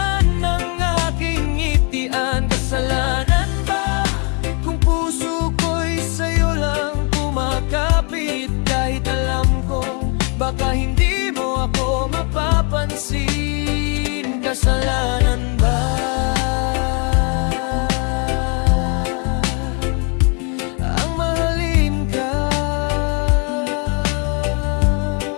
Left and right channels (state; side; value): quieter; right; 35.7 dB